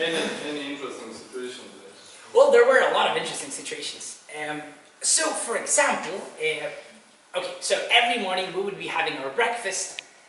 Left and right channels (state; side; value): identical; both; correlation 1.00